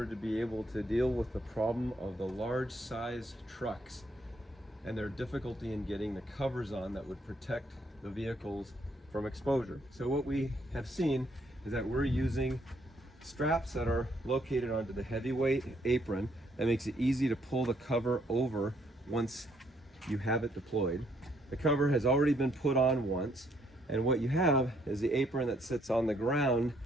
to be able to deal with the problem of the large size trucks and their difficulty in getting the covers on that would protect the vehicles from exposure. So what we have seen is that we're using straps that are located onto the heavyweight apron that makes it easy to pull the cover over once you have it deployed. The cover has already been put on once, and what you have is the apron that sits on the ground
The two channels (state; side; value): normal; both; correlation 0.70